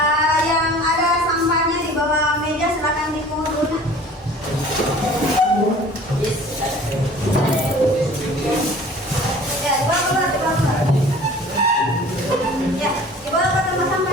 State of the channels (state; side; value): normal; both; correlation 0.47